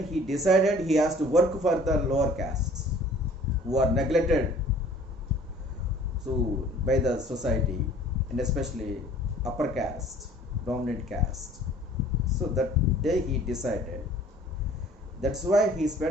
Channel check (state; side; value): normal; both; correlation 0.52